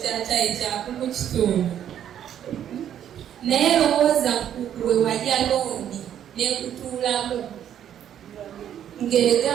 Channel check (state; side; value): quieter; left; 10.1 dB